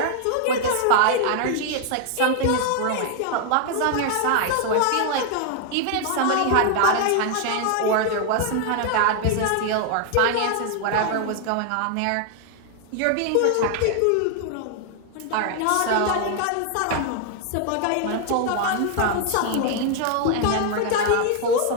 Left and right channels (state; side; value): different; both; correlation 0.00